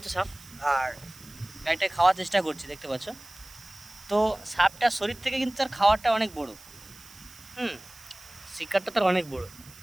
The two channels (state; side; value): noise; right; hiss, 20 dB below the sound